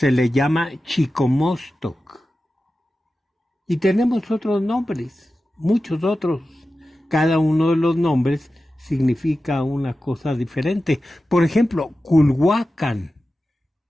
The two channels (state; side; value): normal; both; correlation 0.93